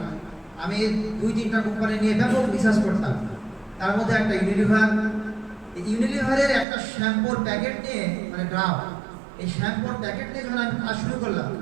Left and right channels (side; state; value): left; drops out; at 6.7 s